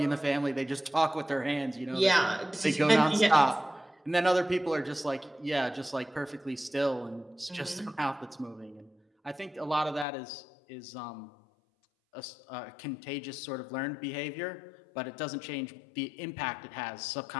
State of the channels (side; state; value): right; drops out; at 10.1 s